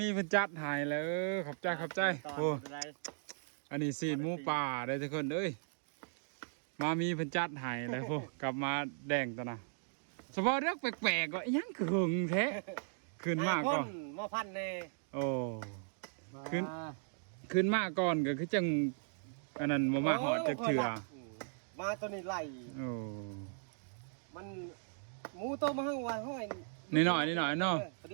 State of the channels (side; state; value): left; silent; digital silence